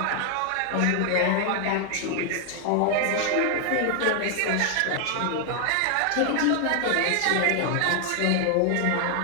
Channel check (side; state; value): both; different; correlation 0.00